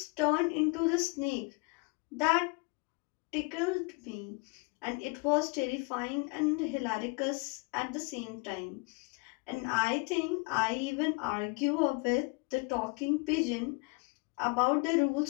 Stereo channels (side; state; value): right; quieter; 30.8 dB